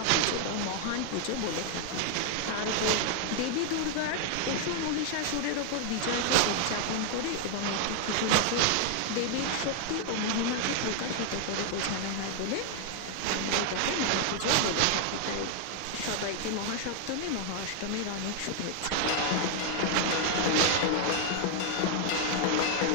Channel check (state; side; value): different; both; correlation 0.00